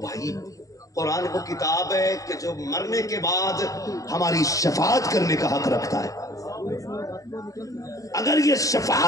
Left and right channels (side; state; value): right; late; 0.16 ms